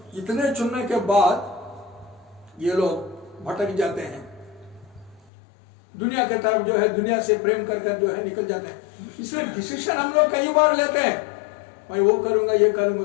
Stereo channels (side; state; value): right; drops out; at 5.3 s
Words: इतने चुनने के बाद ये लोग भटक जाते हैं, दुनिया के तरफ जो है, दुनिया से प्रेम कर जो है निकल जाते हैं। इसलिए डिसीजन हम लोग कई बार लेते हैं, मैं वो करूंगा ये